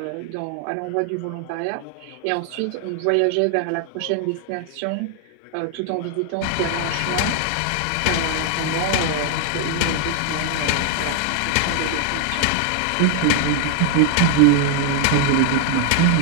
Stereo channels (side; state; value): both; different; correlation 0.00